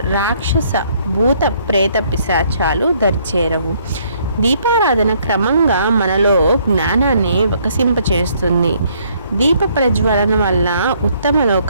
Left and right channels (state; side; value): inverted; both; correlation -0.66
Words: రాక్షస భూత ప్రేత పిశాచాలు దరిచేరవు. దీపారాధన క్రమంగా మనలో జ్ఞానాన్ని వికసింపచేస్తుంది. దీప ప్రజ్వలన వల్ల ఉత్తమ